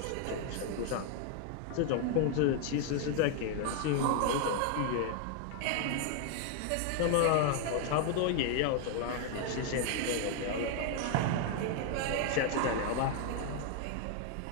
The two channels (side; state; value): both; different; correlation 0.00